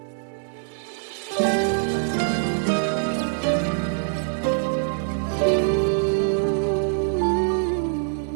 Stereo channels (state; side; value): silent; left; 58 dB below the other